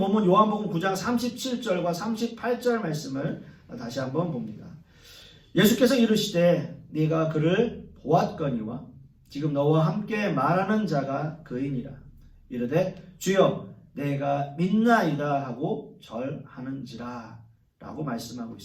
요한복음 9장 37절과 38절 말씀을 다시 한번 봅니다. 예수께서 이르시되 네가 그를 보았거니와 지금 너와 함께 말하는 자가 그이니라. 이르되 주여 내가 믿나이다 하고 절하는지라 라고 말씀하고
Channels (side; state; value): both; identical; correlation 1.00